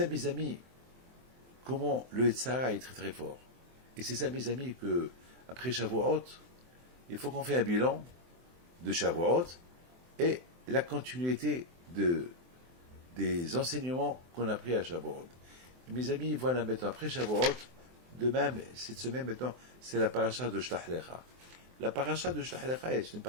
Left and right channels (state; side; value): late; left; 23 ms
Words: mes amis, comment le Yetzirah est très très fort. Et c'est ça, mes amis, que après Shavuot, il faut qu'on fasse un bilan de Shavuot et la continuité des enseignements qu'on a pris à Shavuot. Et mes amis, voilà maintenant, après Shavuot, de même, cette semaine maintenant, c'est la paracha de Shlach Lecha. La paracha de Shlach Lecha est une